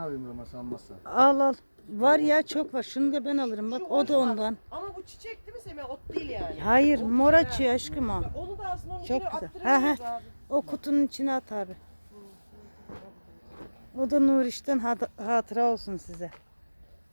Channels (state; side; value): inverted; both; correlation -1.00